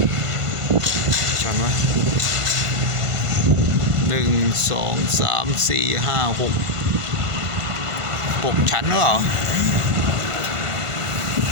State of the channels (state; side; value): late; left; 1.5 ms